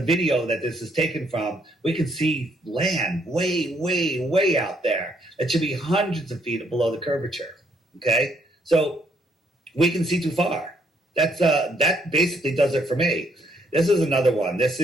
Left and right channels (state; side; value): normal; both; correlation 0.70